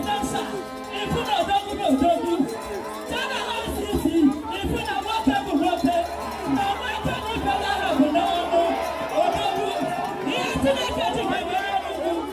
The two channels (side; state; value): both; identical; correlation 1.00